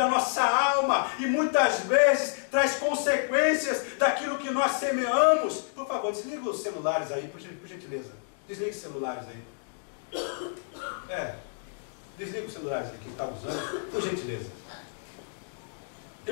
a nossa alma, e muitas vezes traz consequências daquilo que nós semeamos. Por favor, desliga os celulares aí, por gentileza. Desliga os celulares aí. Desliga os celulares aí, quem está usando, por gentileza.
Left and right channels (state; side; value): silent; right; digital silence